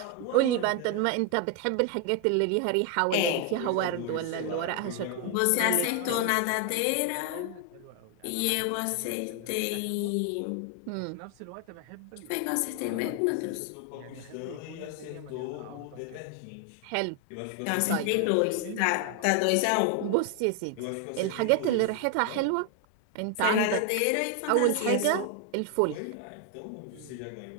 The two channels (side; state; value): both; different; correlation 0.01